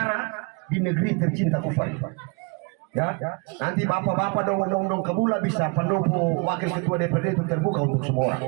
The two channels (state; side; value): quieter; left; 31.8 dB